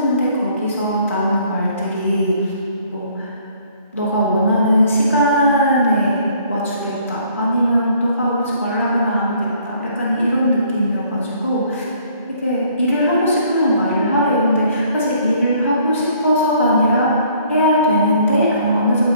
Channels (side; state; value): both; inverted; correlation -0.61